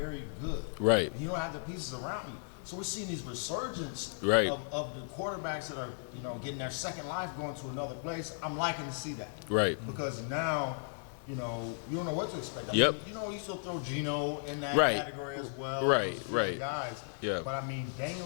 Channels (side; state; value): right; silent; digital silence